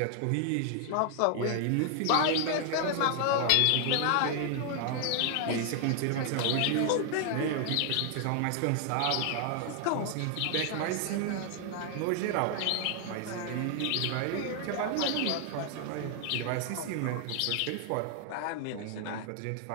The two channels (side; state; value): both; different; correlation 0.00